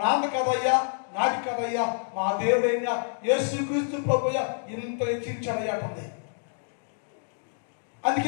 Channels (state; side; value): silent; right; digital silence